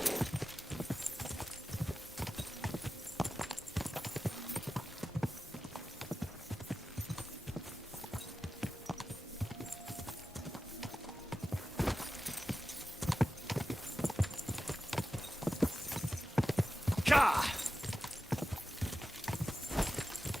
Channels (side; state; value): both; normal; correlation 0.93